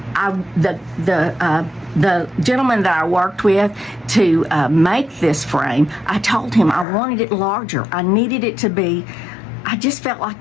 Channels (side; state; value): right; drops out; at 6.9 s